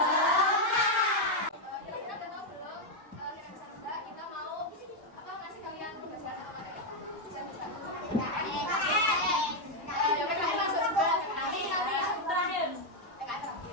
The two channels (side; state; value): both; normal; correlation 0.02